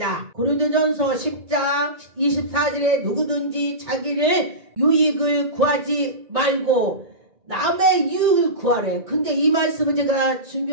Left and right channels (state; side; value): late; left; 1.9 ms